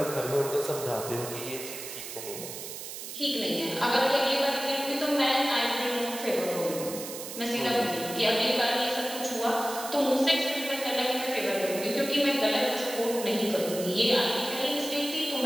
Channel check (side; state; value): right; noise; hiss, 9 dB below the sound